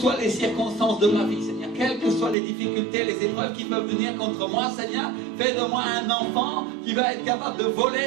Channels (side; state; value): left; drops out; at 2.4 s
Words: les circonstances de ma vie, Seigneur, quelles que soient les difficultés, les épreuves qui peuvent venir contre moi, Seigneur. Fais de moi un enfant qui va être capable de